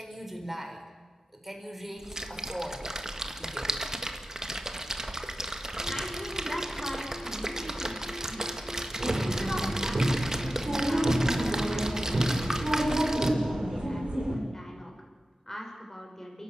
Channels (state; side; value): normal; both; correlation 0.92